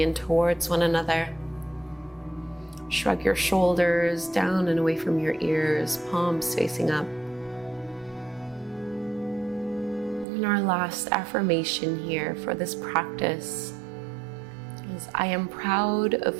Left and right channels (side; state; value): left; drops out; at 10.2 s